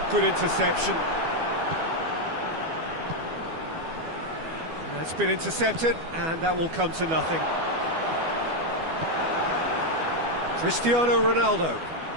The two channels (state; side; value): late; left; 12 ms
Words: good interception. That's been intercepted, and that will come to nothing. Cristiano Ronaldo.